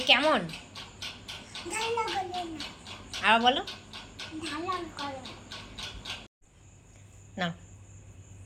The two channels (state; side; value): identical; both; correlation 1.00